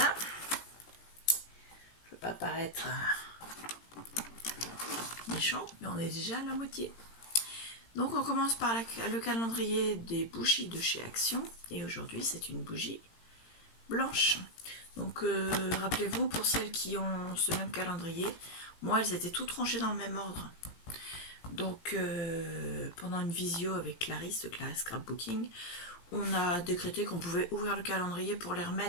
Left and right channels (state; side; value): late; right; 18 ms